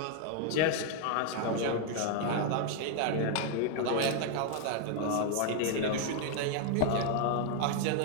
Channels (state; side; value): different; both; correlation 0.00